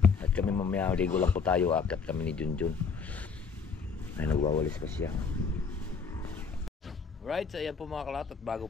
At kami mamaya ligo lang po tayo. Akat kami ni Junjun. Ay nagwawalis pa siya. Right, so ayan po mga kalaot. At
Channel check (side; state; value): right; quieter; 5.3 dB